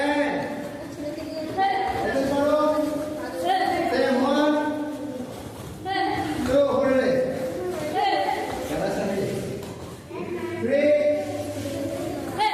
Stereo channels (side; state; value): both; identical; correlation 1.00